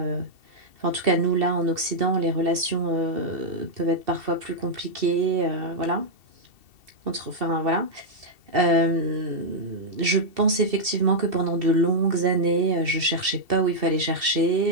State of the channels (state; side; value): late; left; 2.7 ms